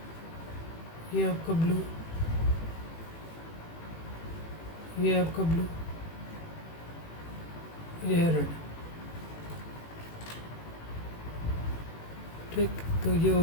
ये आपका ब्लू, ये आपका ब्लू, ये है रेड। ठीक, तो ये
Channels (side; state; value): right; late; 18 ms